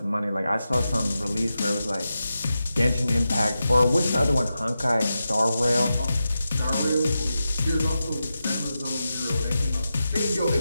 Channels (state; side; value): inverted; both; correlation -0.90